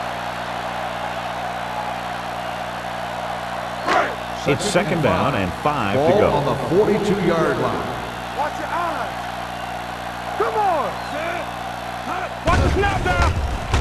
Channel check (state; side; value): identical; both; correlation 1.00